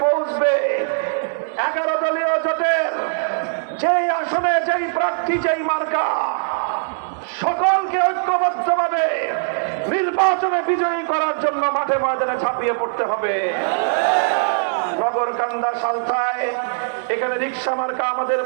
পৌঁছবে, 11 দলীয় জোটের যেই আসনে যেই প্রার্থী যেই মার্কা, সকলকে ঐক্যবদ্ধভাবে নির্বাচনে বিজয়ী করার জন্য মাঠে ময়দানে ঝাঁপিয়ে পড়তে হবে। নগরকান্দা, সালথায় এখানে রিক্সা মার্কা আমাদের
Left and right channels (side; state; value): left; silent; digital silence